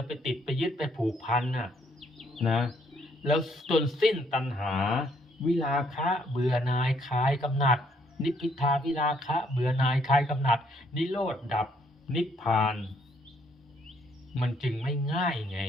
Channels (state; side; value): normal; both; correlation 0.68